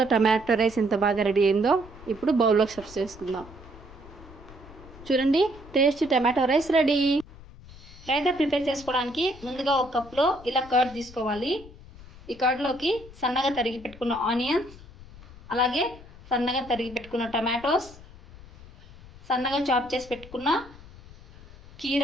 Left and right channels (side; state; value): left; noise; rumble, 19 dB below the sound